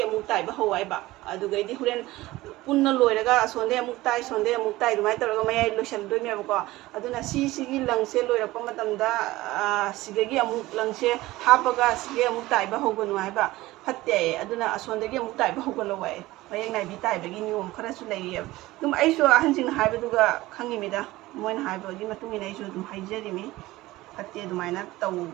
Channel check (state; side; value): quieter; left; 18.2 dB